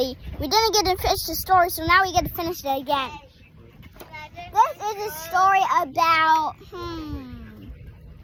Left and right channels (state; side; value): identical; both; correlation 1.00